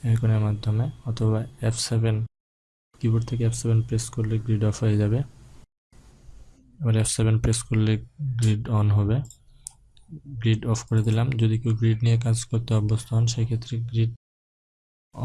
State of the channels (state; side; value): identical; both; correlation 1.00